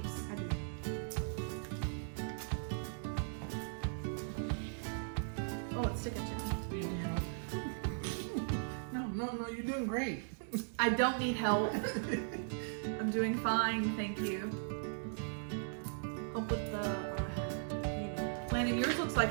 I do. Oh, it's sticking to me. No, you're doing great. I don't need help. I'm doing fine, thank you. Help with the. Landon, yours looks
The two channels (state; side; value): silent; left; digital silence